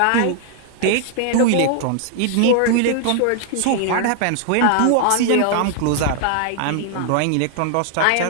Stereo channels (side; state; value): both; different; correlation 0.00